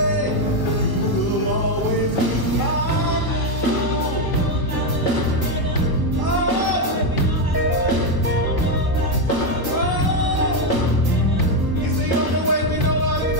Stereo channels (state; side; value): late; left; 1.1 ms